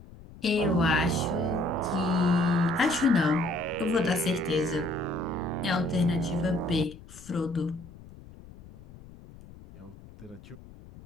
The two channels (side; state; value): left; noise; rumble, 19 dB below the sound